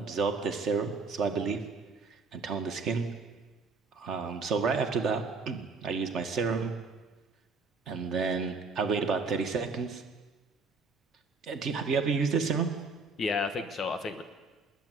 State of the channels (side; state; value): left; quieter; 4.0 dB